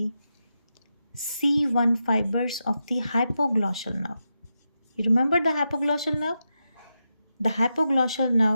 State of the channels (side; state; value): both; inverted; correlation -0.88